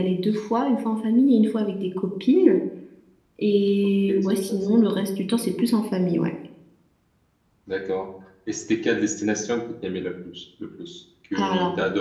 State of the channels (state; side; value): identical; both; correlation 1.00